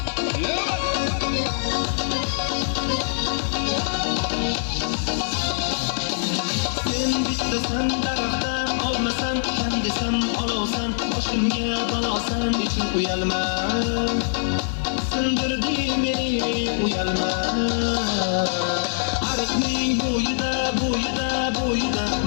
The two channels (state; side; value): silent; right; digital silence